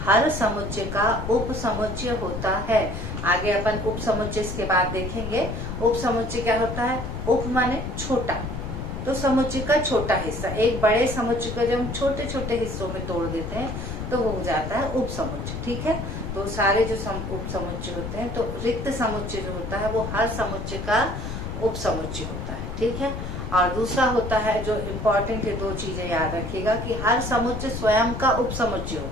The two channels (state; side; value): noise; left; rumble, 6 dB below the sound